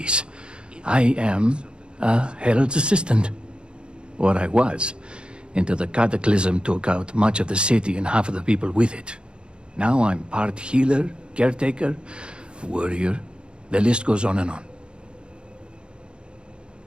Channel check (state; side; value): late; left; 0.053 ms